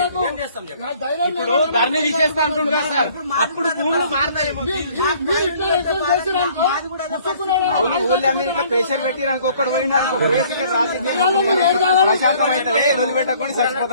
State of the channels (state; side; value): inverted; both; correlation -0.57